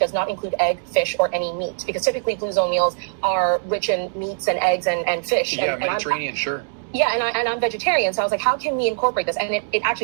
not include egg, fish, or any meat?" Because typically Blue Zone meals are rich in meats and eggs and fish. Yeah, Mediterranean, sure. Yeah, and I'm vegetarian, so I was like, how can we incorporate this? And it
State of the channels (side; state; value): left; silent; digital silence